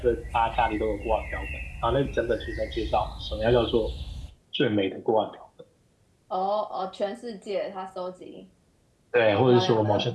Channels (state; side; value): identical; both; correlation 1.00